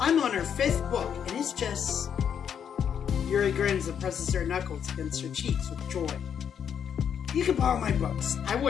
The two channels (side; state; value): right; quieter; 8.1 dB